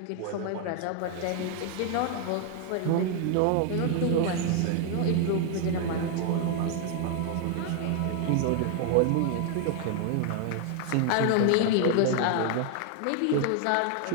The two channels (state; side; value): different; both; correlation 0.00